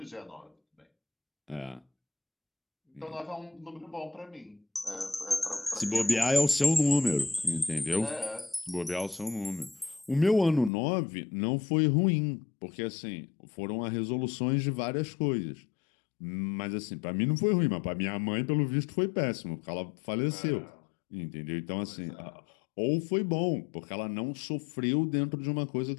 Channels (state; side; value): drops out; right; at 10.7 s